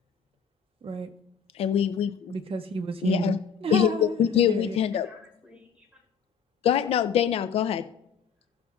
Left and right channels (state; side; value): quieter; right; 6.7 dB